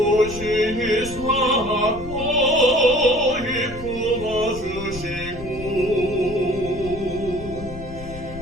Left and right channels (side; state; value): left; noise; rumble, 13 dB below the sound